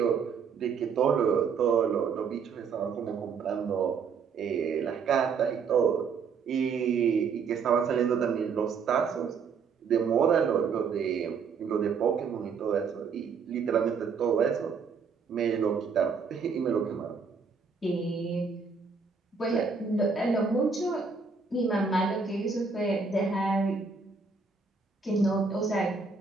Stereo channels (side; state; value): left; quieter; 5.5 dB